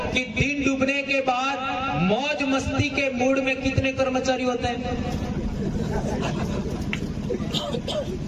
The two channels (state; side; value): identical; both; correlation 1.00